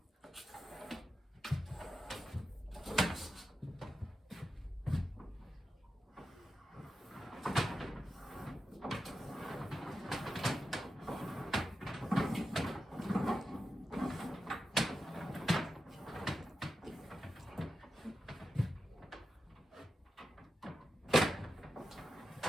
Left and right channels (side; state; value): both; normal; correlation 0.89